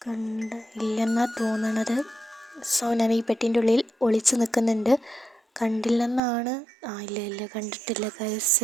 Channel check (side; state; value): left; drops out; at 6.2 s